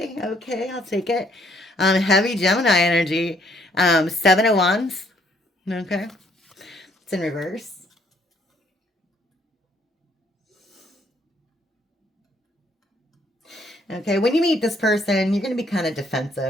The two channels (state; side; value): normal; both; correlation 0.67